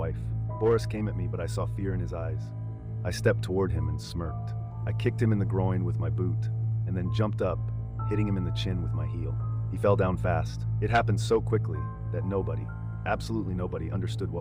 Boris came at me, but I saw fear in his eyes. I stepped toward him and smirked. I kicked him in the groin with my boot, and then jumped up, hitting him in the chin with my heel. He fell down fast. It happened so quickly that nobody, absolutely nobody, understood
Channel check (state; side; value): identical; both; correlation 1.00